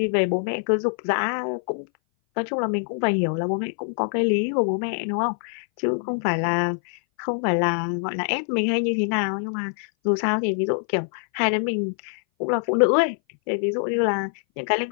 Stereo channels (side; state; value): right; silent; 59 dB below the other